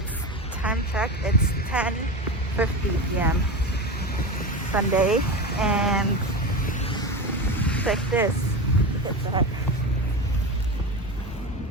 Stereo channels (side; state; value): both; normal; correlation 0.24